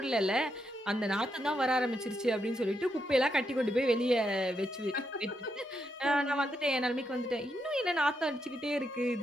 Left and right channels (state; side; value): normal; both; correlation 0.81